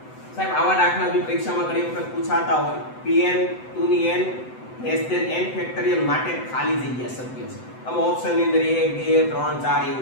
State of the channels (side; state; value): right; late; 7.9 ms